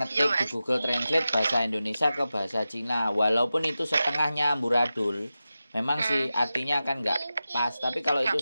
ngetik di Google Translate bahasa Indonesia ke bahasa Cina. Walaupun itu setengahnya amburadul, memang sih artinya kan nggak pas. Tapi kalau itu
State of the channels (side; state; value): both; inverted; correlation -0.93